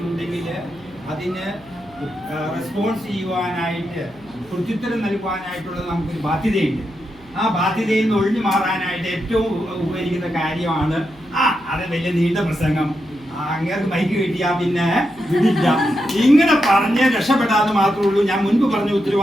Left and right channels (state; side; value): noise; right; hum, 26 dB below the sound